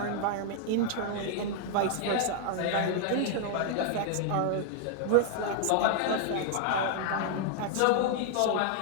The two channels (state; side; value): different; both; correlation 0.00